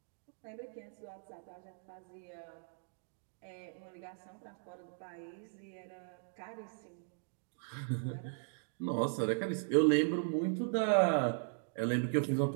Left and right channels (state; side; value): silent; left; digital silence